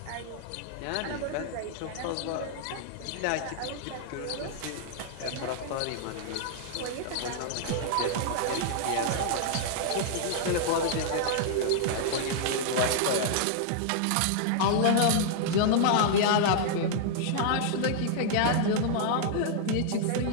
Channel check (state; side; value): different; both; correlation -0.01